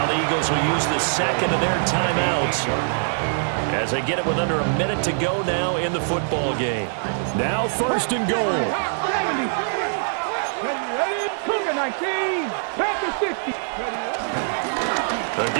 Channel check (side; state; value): left; silent; digital silence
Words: the Eagles will use the second of their timeouts as they get it with under a minute to go now in the football game. Now first and goal. 70. Cougar 19. Panther 60. The